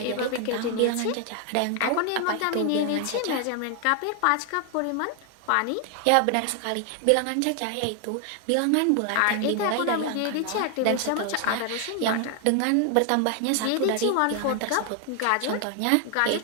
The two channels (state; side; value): different; both; correlation 0.00